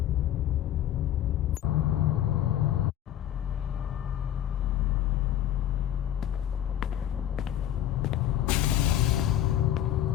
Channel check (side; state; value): right; quieter; 11.4 dB